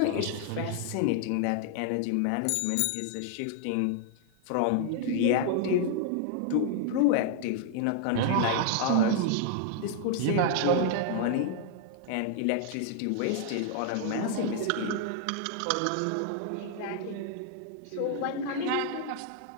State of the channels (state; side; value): different; both; correlation 0.00